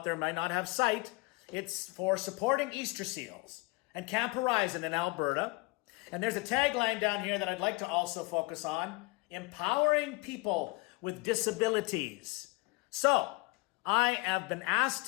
there might not have sight, it's for supporting Easter seals and Camp Horizon in Alberta. And there's a tagline down here that I'd like to also focus on: empowering people with disabilities. So, I have been asked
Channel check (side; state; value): right; quieter; 24.3 dB